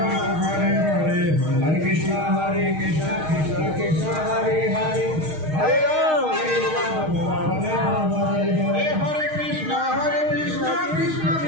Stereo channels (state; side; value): late; left; 6.4 ms